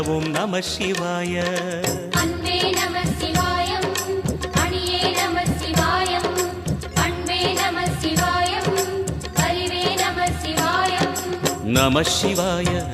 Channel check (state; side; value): identical; both; correlation 1.00